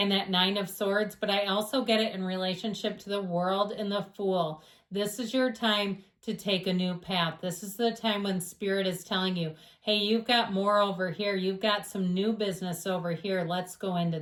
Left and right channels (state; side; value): identical; both; correlation 1.00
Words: that 9 of Swords, but I also get it in relationship to the World and the Fool. This is your time to take a new path. This is the time when Spirit is telling you, hey, you've got more over here. You've got some new business over here. Let's go into